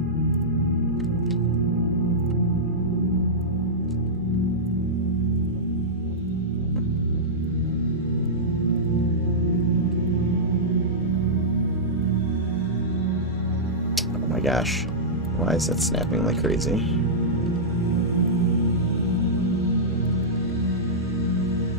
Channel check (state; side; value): normal; both; correlation -0.13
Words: Oh my gosh. Why is that snapping like crazy?